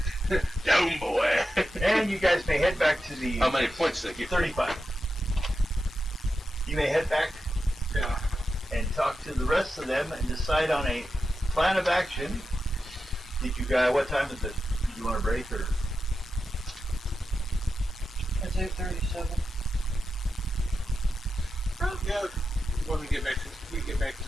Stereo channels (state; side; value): normal; both; correlation 0.90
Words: Down, boy. And you guys may head back to the How many points did I get? 35. You may head back Yeah. and talk to the rest of them and decide on a plan of action. Did you guys? What time is it? Did you want to break or? It's 8:37. Yeah. When we get back